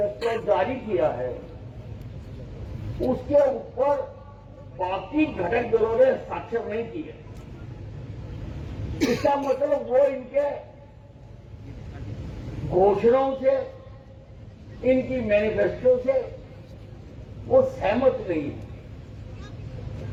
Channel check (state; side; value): identical; both; correlation 1.00